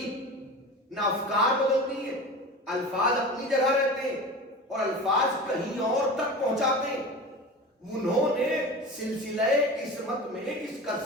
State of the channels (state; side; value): normal; both; correlation 0.32